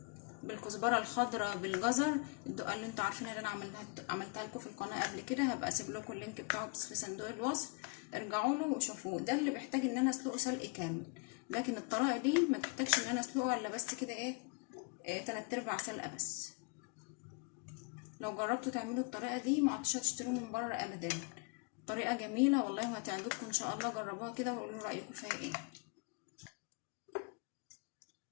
بالكزبره الخضراء بالجزر، الدقه اللي انتوا عارفينها، اللي انا عملتها لكم في القناه قبل كده، هبقى اسيب لكم اللينك بتاعه بس في صندوق الوصف، ارجعوا له وشوفوه. ده اللي بيحتاج ان انا اسلقه سلق كامل، لكن الطريقه دي ما تحتاجش ان انا اسلقه الا بس كده ايه 3/4 سلقه بس. لو جربتوا تعملوا الطريقه دي ما عدتوش هتشتروه من بره ابدا، طريقه جميله والله وهتعجبكم ان شاء الله. جربوها كده وقولوا رايكم فيها ايه.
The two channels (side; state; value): right; quieter; 34.1 dB